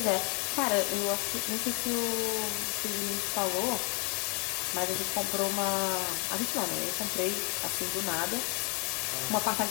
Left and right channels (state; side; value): quieter; right; 34.2 dB